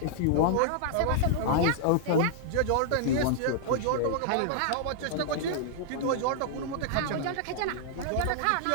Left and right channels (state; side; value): different; both; correlation -0.01